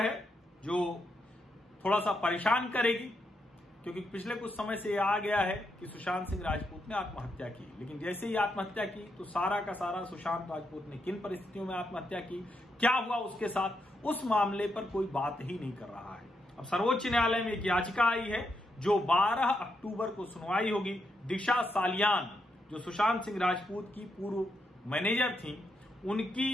है जो थोड़ा सा परेशान करेगी, क्योंकि पिछले कुछ समय से आ गया है कि सुशांत सिंह राजपूत ने आत्महत्या की। लेकिन जैसे ही आत्महत्या की तो सारा का सारा सुशांत राजपूत ने किन परिस्थितियों में आत्महत्या की, क्या हुआ उसके साथ, उस मामले पर कोई बात ही नहीं कर रहा है। अब सर्वोच्च न्यायालय में एक याचिका आई है जो 12 अक्टूबर को सुनवाई होगी। दिशा सालियान जो सुशांत सिंह राजपूत की पूर्व मैनेजर थी,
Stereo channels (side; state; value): both; normal; correlation 0.81